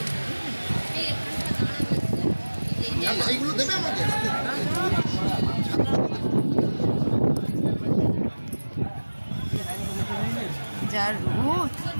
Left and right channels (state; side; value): inverted; both; correlation -1.00